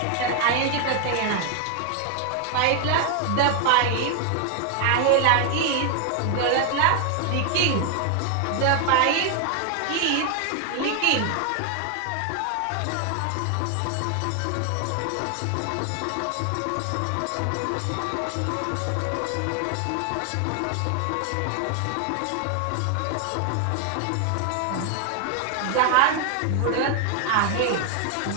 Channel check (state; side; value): different; both; correlation 0.01